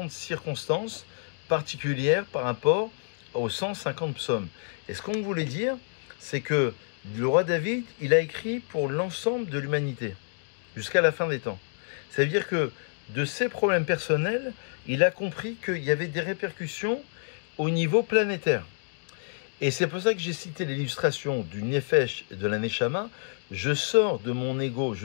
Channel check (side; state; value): right; silent; digital silence